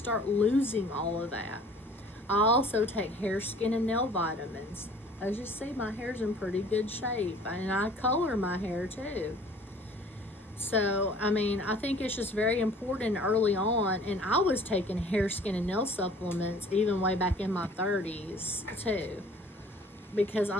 losing all of that. I also take hair, skin, and nail vitamins. As you see, my hair's in pretty good shape, and I color my hair too. So, I mean, I think it's just very important early on, and I was taking hair, skin, and nail supplements even way back in my 30s too. because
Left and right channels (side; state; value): both; normal; correlation 0.51